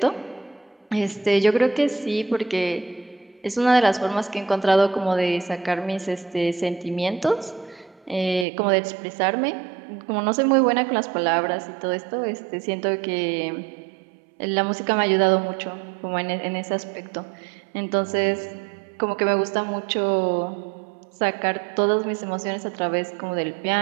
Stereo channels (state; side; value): drops out; left; at 8.5 s